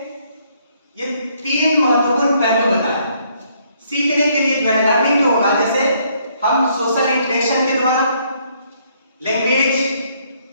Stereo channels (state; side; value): inverted; both; correlation -0.68